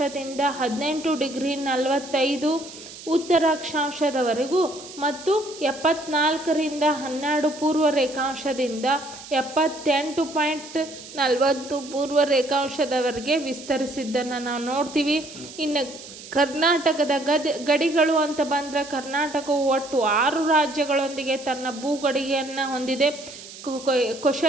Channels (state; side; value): noise; right; hiss, 15 dB below the sound